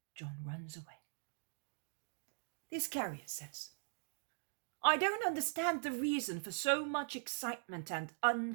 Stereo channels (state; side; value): silent; left; digital silence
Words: John runs away. The Iscariot says, "I don't understand the reason for so much excitement and